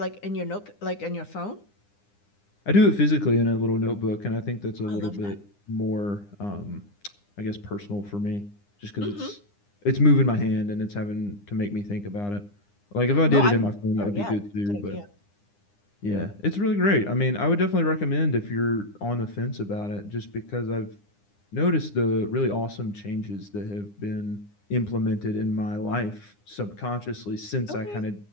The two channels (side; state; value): right; late; 9.8 ms